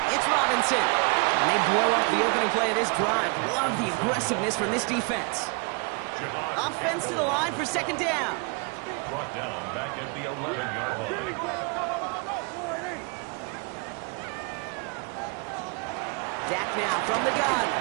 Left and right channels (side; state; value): left; quieter; 34.0 dB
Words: It's Robinson. And they blow up the opening play of this drive. Love the aggressiveness from this defense. Offense to the line for 2nd down. Brought down back at the 11-yard line. Dak now from the gun.